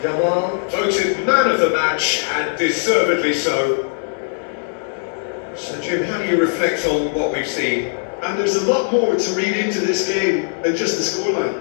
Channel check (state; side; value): silent; right; digital silence